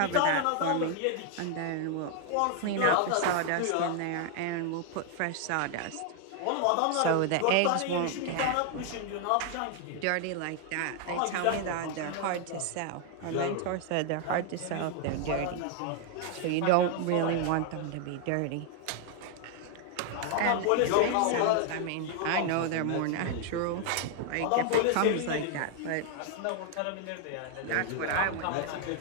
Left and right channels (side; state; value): both; different; correlation 0.00